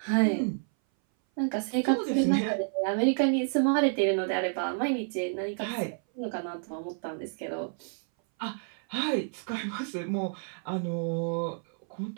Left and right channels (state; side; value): silent; left; 58 dB below the other